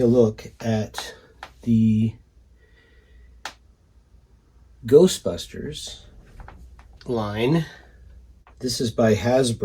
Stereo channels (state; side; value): identical; both; correlation 1.00